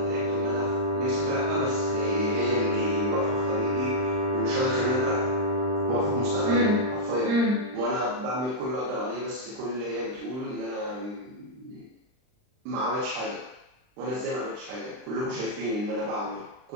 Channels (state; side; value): late; left; 39 ms